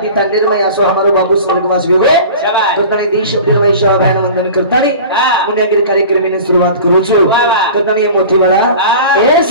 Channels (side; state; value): both; inverted; correlation -0.38